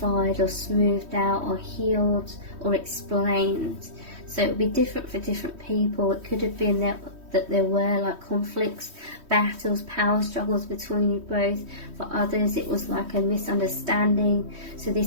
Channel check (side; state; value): left; late; 3.1 ms